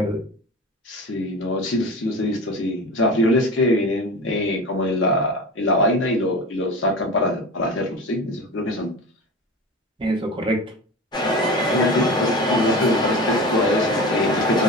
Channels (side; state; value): both; normal; correlation 0.30